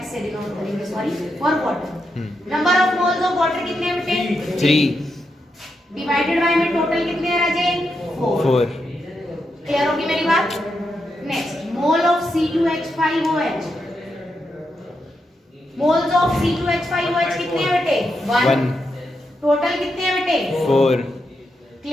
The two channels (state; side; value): normal; both; correlation 0.84